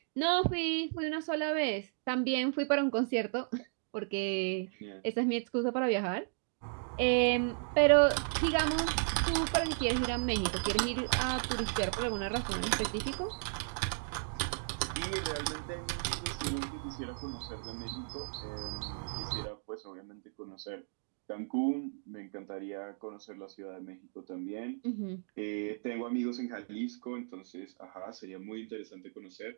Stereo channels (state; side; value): silent; left; digital silence